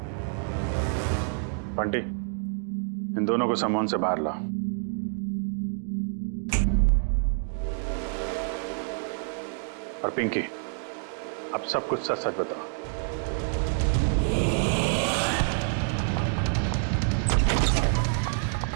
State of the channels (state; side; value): silent; left; 60 dB below the other